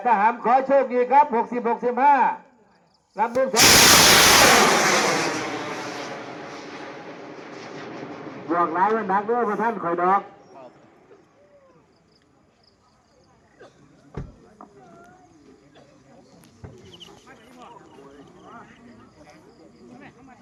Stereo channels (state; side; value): identical; both; correlation 1.00